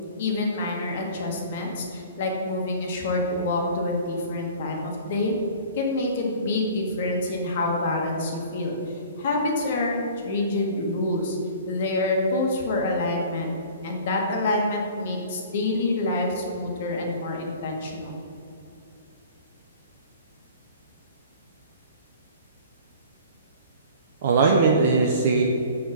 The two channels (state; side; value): inverted; both; correlation -0.45